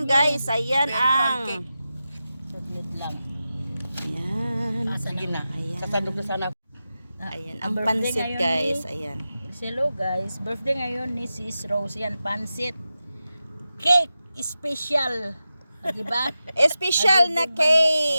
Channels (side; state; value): both; inverted; correlation -0.92